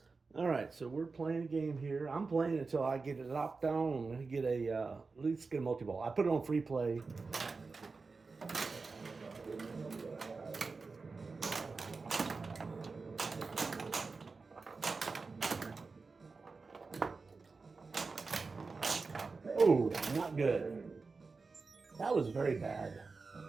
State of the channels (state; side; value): quieter; left; 4.3 dB